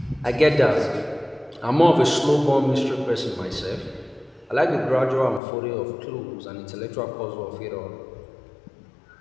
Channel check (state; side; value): drops out; right; at 5.4 s